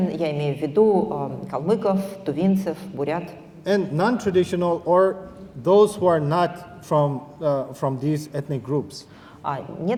я имею в виду калмыков, тувинцев, бурят. And non-traditional or those who are not from these ethnic groups. А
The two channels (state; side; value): identical; both; correlation 1.00